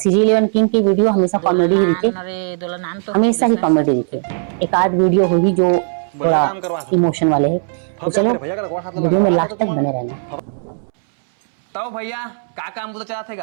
किंग की वीडियो हमेशा कॉमेडी ही दिखे, हमेशा ही कॉमेडी दिखे। एक आध वीडियो होगी जो थोड़ा इमोशन वाले है। तो चलो वीडियो में लास्ट तक बने रहना। तो भैया का काम बुता चला थे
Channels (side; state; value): left; silent; 68 dB below the other